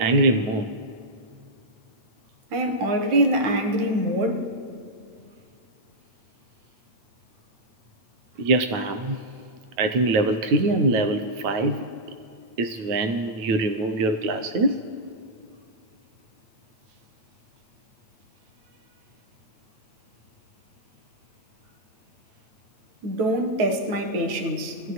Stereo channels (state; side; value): late; left; 9.3 ms